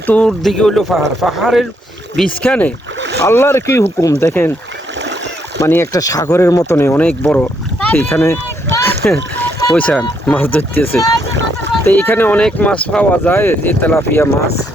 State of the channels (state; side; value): normal; both; correlation 0.74